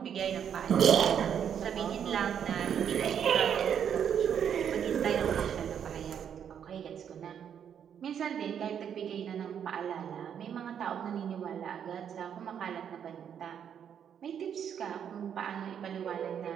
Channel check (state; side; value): quieter; left; 8.5 dB